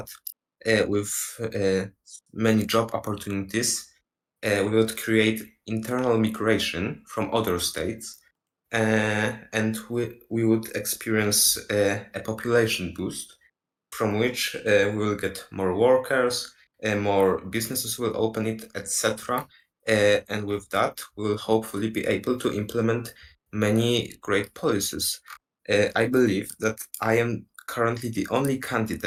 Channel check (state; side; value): identical; both; correlation 1.00